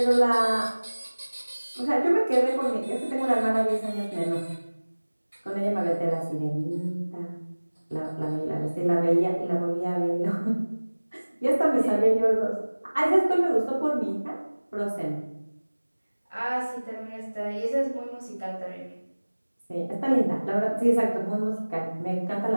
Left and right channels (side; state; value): both; inverted; correlation -1.00